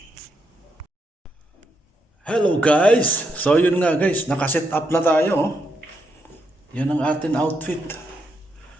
Hello guys! So yun nga guys, nakaset up na tayo. Oh. Yan ang ating outfit.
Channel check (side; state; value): both; normal; correlation 0.80